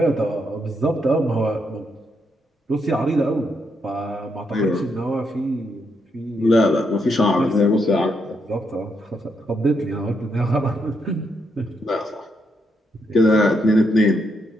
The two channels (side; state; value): both; normal; correlation 0.79